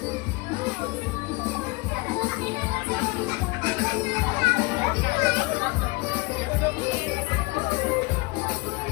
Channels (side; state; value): right; quieter; 25.1 dB